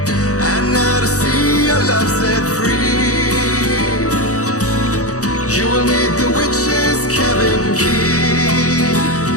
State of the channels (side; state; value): right; late; 0.66 ms